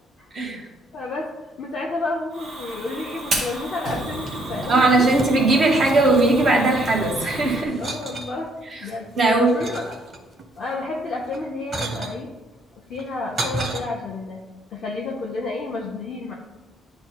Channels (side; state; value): both; normal; correlation 0.67